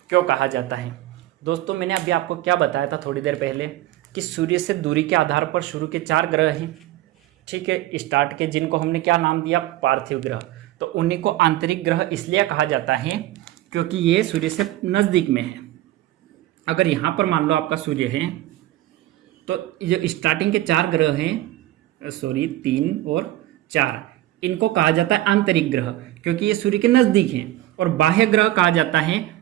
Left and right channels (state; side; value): quieter; left; 15.3 dB